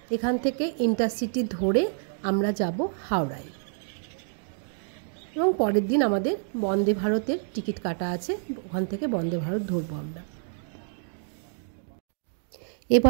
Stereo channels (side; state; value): left; silent; 56 dB below the other